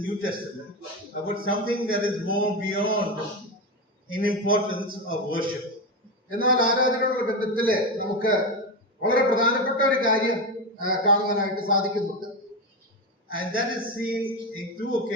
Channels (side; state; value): both; normal; correlation 0.15